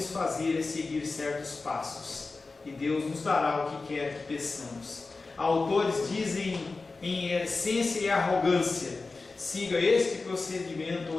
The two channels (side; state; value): right; quieter; 3.8 dB